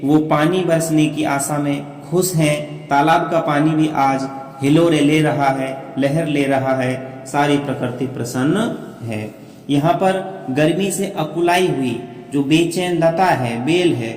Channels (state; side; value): identical; both; correlation 1.00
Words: वो पानी बरसने की आशा में खुश हैं। तालाब का पानी भी आज हिलोरे ले रहा है, लहर ले रहा है। सारी प्रकृति प्रसन्न है। यहाँ पर गर्मी से अकुलाई हुई जो बेचैन लता है, बेल है,